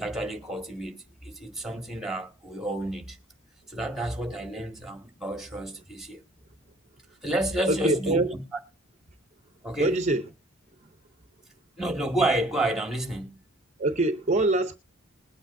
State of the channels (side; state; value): both; normal; correlation 0.54